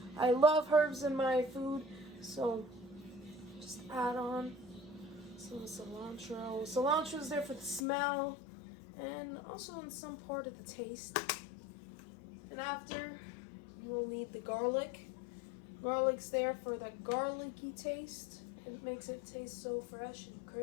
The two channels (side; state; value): right; drops out; at 7.9 s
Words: I love herbs in my food, so just add on some cilantro. Cilantro is there for the smell and also in some part of the taste. And after, you will need the garlic. Garlic's there for that garlicky taste. It makes it taste so fresh and